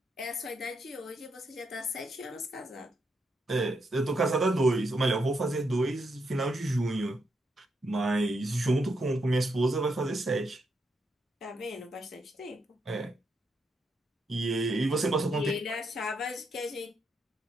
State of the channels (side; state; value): both; normal; correlation 0.80